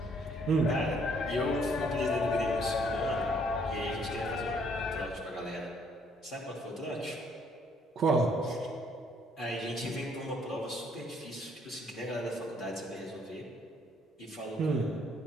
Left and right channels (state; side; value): normal; both; correlation 0.65